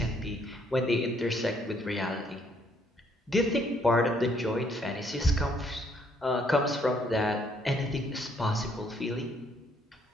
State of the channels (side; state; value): both; normal; correlation 0.68